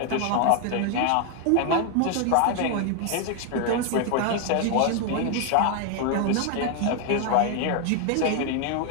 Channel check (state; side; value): different; both; correlation 0.01